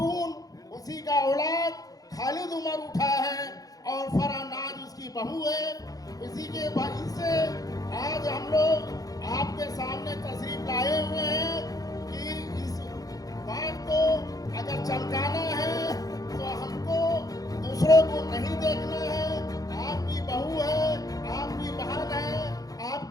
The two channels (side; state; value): right; late; 0.18 ms